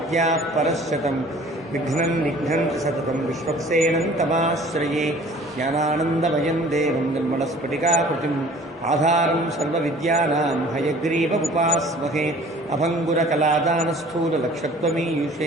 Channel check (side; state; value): both; normal; correlation 0.49